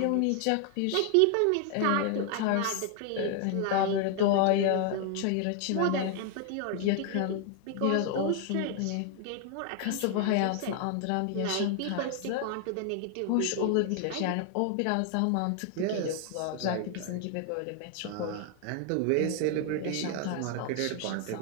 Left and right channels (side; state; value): both; different; correlation 0.00